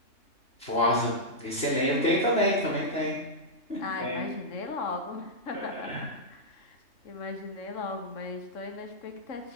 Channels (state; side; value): late; right; 3.0 ms